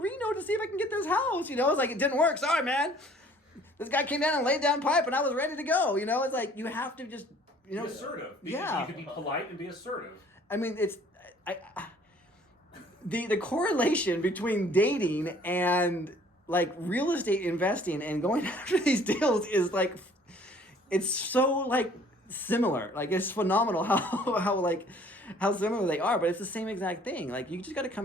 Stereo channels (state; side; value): normal; both; correlation 0.56